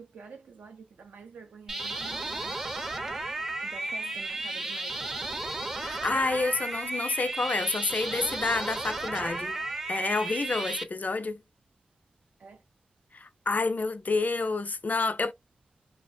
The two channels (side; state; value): both; normal; correlation 0.76